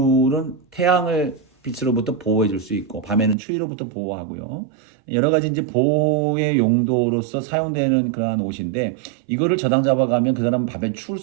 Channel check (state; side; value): drops out; left; at 3.4 s